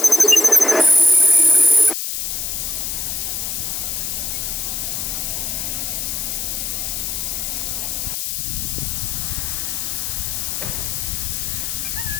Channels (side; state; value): left; noise; hiss, 2 dB below the sound